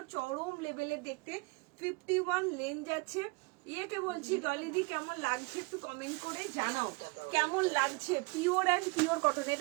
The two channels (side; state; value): left; quieter; 27.4 dB